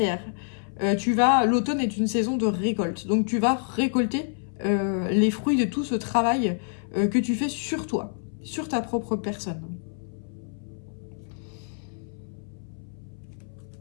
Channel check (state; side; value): silent; right; 58 dB below the other